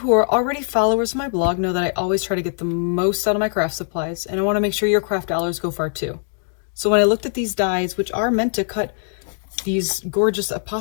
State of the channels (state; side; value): silent; right; 65 dB below the other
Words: are already followers of my blog know that I always try to get the most out of my craft supplies, and I want to make sure your craft dollars go far too. So when I looked at these dies, which are meant to cut these gorgeous